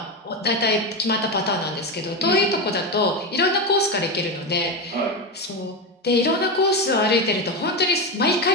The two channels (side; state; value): both; normal; correlation 0.14